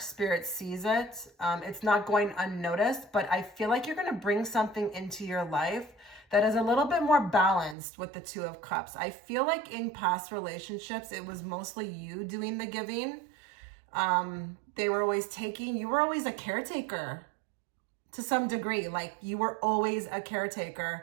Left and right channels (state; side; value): drops out; left; at 7.8 s